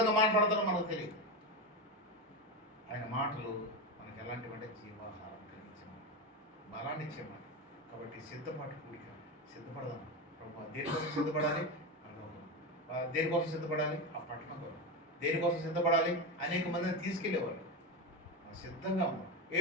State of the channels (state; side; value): normal; both; correlation 0.17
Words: మాట్లాడతారో మనకు తెలియదు. ఆయన మాటలు మనకు ఎలాంటివంటే జీవాహారం కలిగించమని, బలాన్ని ఇచ్చేమని. కాబట్టి సిద్ధపాటు కూడిక సిద్ధపడదాం. ప్రభువా, దేనికోసం సిద్ధపడాలి? దేనికోసం సిద్ధపడాలి? ఆ పట్టణం కొరకు. దేనికోసం సిద్ధపడాలి? అనేక మందిని తీసుకెళ్ళేవాళ్ళు. సిద్ధంగా ఉన్నాం.